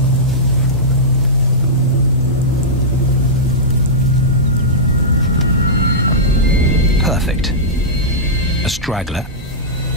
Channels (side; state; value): both; normal; correlation -0.13